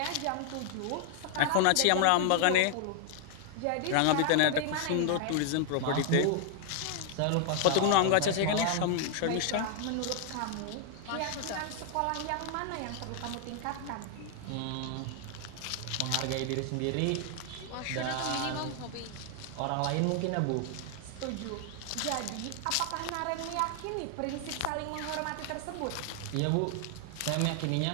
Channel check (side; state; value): both; different; correlation 0.00